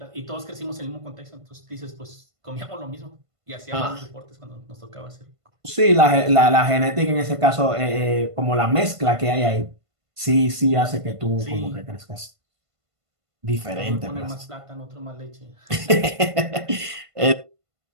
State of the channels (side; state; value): left; late; 1.5 ms